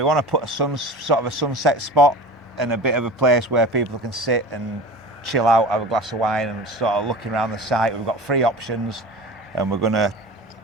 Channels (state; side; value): normal; both; correlation 0.35